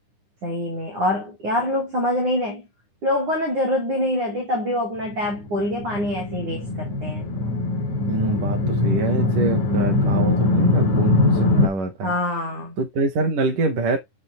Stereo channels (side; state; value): left; late; 9.9 ms